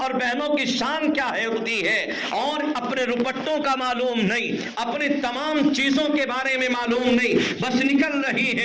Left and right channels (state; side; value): identical; both; correlation 1.00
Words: اور بہنوں کی شان کیا ہوتی ہے، اور اپنے روپٹوں کا معلوم نہیں، اپنی تمام چیزوں کے بارے میں معلوم نہیں، بس نکل رہی